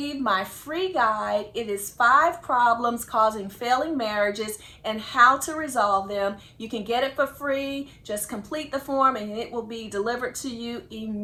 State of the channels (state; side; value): identical; both; correlation 1.00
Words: my free guide. It is 5 problems causing failing marriages and how to resolve them. You can get it for free. Just complete the form and it will be delivered to you